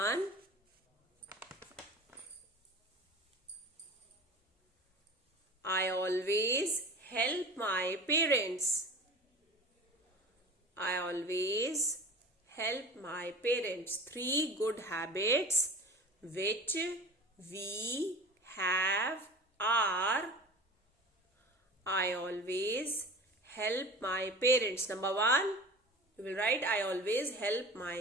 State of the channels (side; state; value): both; normal; correlation 0.37